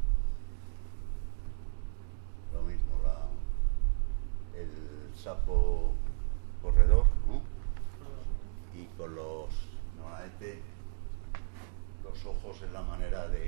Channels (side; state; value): left; silent; digital silence